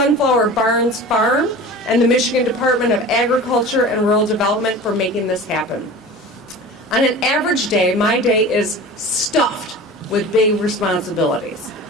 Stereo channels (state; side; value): normal; both; correlation 0.36